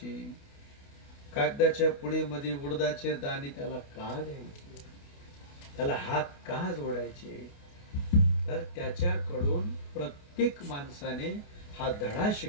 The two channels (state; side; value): late; right; 28 ms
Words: कागदाच्या पुडीमध्ये उडदाचे दाणे त्याला का द्यायचे, त्याला हात का जोडायचे. तर त्याच्याकडून प्रत्येक माणसाने हा धडा